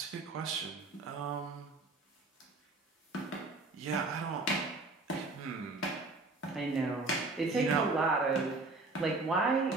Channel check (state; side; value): quieter; left; 3.4 dB